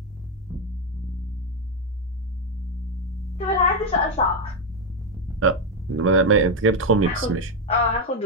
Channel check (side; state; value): both; normal; correlation 0.05